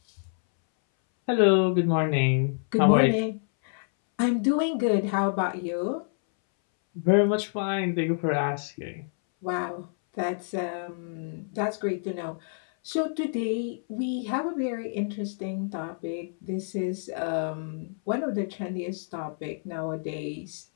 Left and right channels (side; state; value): right; silent; 60 dB below the other